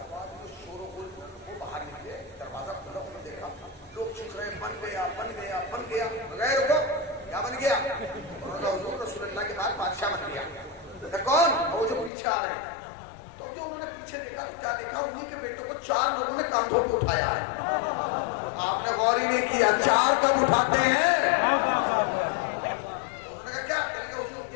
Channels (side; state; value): right; drops out; at 12.1 s